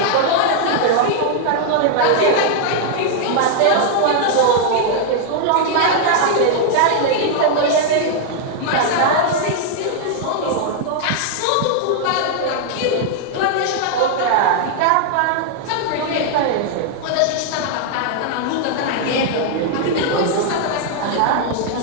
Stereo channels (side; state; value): both; different; correlation 0.00